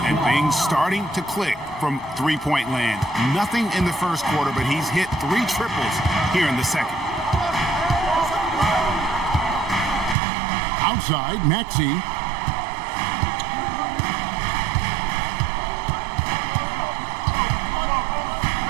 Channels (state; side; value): drops out; left; at 10.2 s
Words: And things starting to click from three-point land. Nothing in the first quarter, but he's hit 3 triples here in the second. Outside, Maxey.